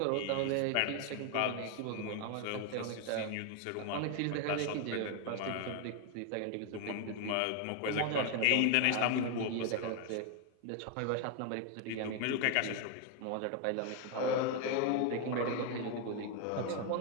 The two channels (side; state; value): both; different; correlation 0.01